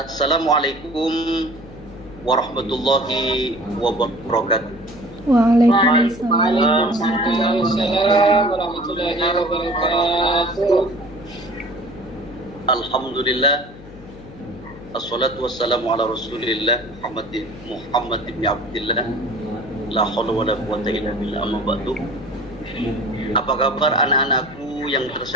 warahmatullahi wabarakatuh. Waalaikumsalam. Waalaikumsalam warahmatullahi wabarakatuh. Alhamdulillah. Assalatu wassalamu ala Rasulillah Muhammad ibn Abdillah. La haula wala quwwata illa billah, amma ba'du. Apa kabar anak-anakku yang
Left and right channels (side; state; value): left; noise; hum, 18 dB below the sound